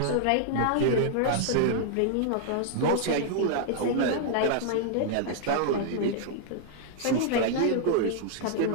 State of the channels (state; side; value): different; both; correlation -0.01